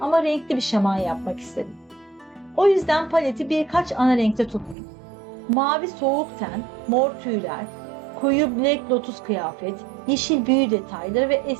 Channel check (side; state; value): left; drops out; at 4.8 s